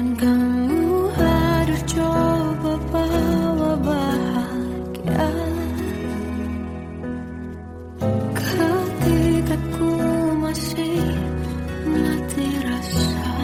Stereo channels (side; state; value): both; identical; correlation 1.00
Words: kamu hadir coba bawa bahagia ketika ku masih mati rasa.